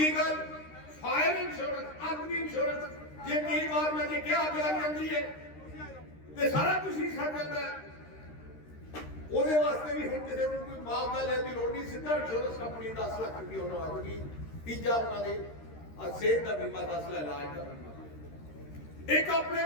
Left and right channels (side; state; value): right; late; 13 ms